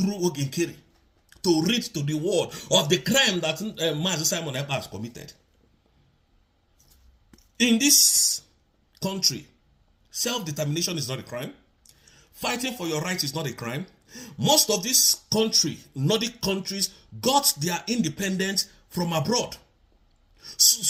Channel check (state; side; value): identical; both; correlation 1.00